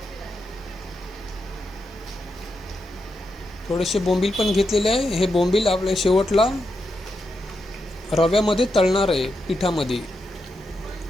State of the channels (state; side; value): normal; both; correlation 0.85